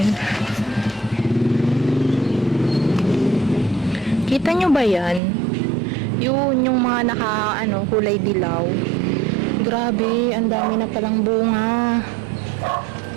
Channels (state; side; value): drops out; left; at 5.2 s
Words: Kita nyo ba yan? Yun, yung mga kulay dilaw. Grabe, ang dami na palang bunga.